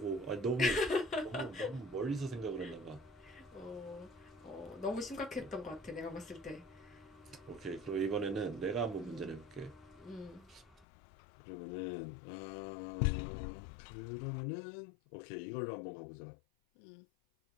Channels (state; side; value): drops out; right; at 10.9 s